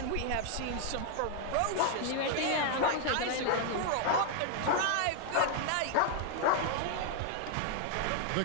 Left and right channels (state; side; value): different; both; correlation 0.00